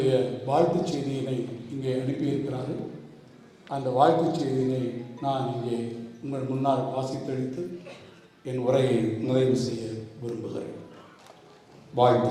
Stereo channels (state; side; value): identical; both; correlation 1.00